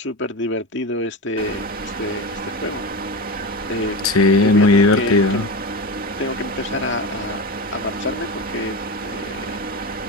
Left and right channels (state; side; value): normal; both; correlation 0.21